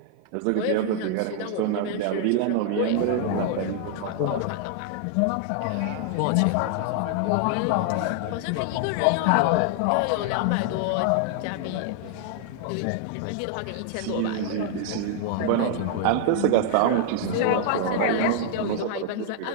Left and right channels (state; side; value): different; both; correlation 0.00